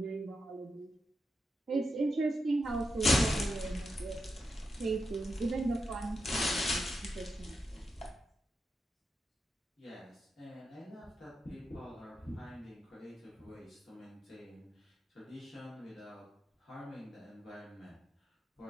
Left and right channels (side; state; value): both; normal; correlation 0.86